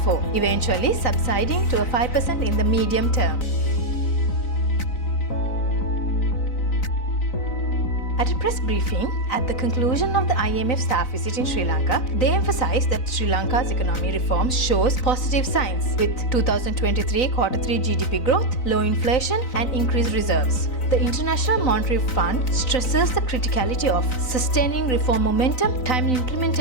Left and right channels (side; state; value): right; late; 3.9 ms